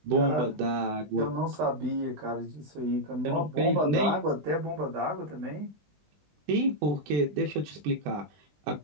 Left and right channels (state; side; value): late; left; 20 ms